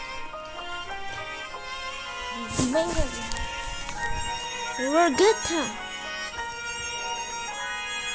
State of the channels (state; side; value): identical; both; correlation 1.00